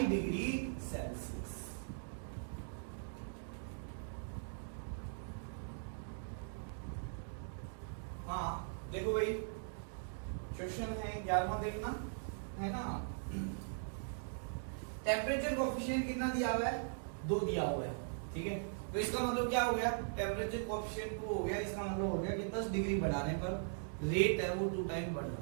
degrees Celsius. हाँ देखो भाई, क्वेश्चन है 11वां देखना है ना। टेम्परेचर कोएफिशिएंट कितना दिया हुआ है, 2 दिया हुआ है, ठीक है, तो इसका मतलब क्या हो गया, टेम्परेचर कोएफिशिएंट 2 हो गया, इसका मतलब हो गया कि 10 डिग्री बढ़ाने पर रेट है वो 2 टाइम बढ़ जाता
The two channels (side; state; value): left; silent; digital silence